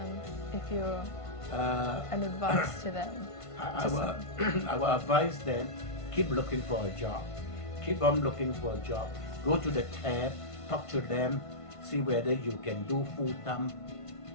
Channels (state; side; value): late; right; 1.5 ms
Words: if you're an advice to them? I will advise them, keep looking for a job. Keep on looking for a job. Go to the tab, talk to them, see whether you can do full time.